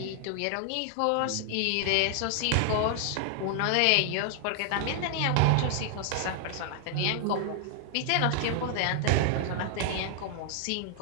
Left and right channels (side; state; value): both; different; correlation -0.01